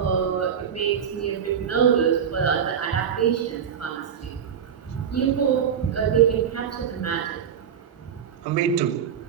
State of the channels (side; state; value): left; quieter; 8.0 dB